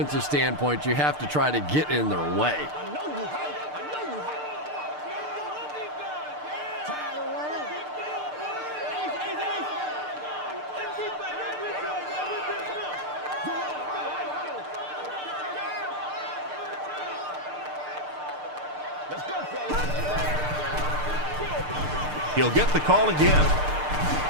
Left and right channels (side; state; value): left; late; 6.7 ms